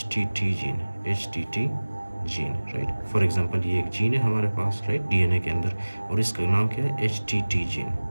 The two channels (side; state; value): both; inverted; correlation -1.00